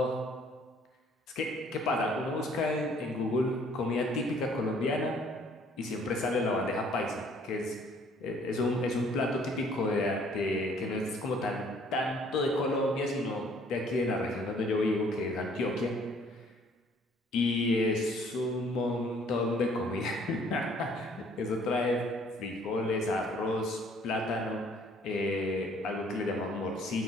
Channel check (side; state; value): both; normal; correlation 0.59